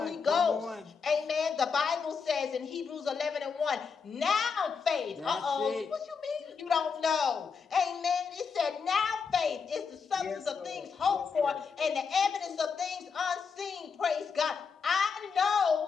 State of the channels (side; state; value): right; quieter; 5.7 dB